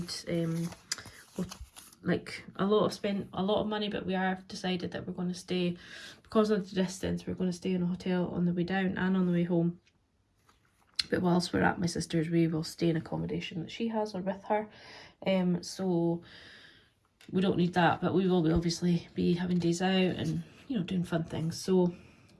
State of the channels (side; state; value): both; identical; correlation 1.00